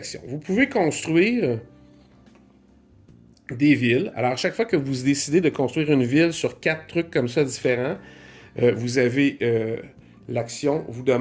Vous pouvez construire des villes. Alors, à chaque fois que vous décidez de construire une ville sur 4 trucs comme ça différents, vous avez l'action vous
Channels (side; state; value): both; identical; correlation 1.00